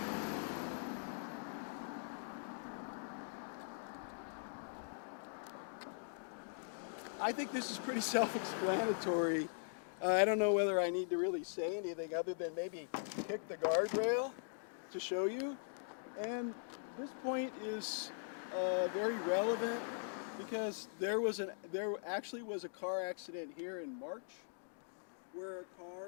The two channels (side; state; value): right; silent; digital silence